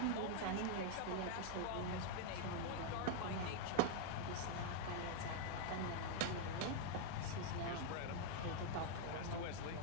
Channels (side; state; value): both; different; correlation 0.00